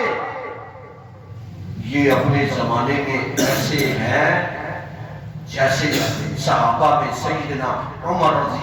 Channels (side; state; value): both; identical; correlation 1.00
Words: یہ اپنے زمانے میں ایسے ہیں جیسے صحابہ میں سیدنا عمر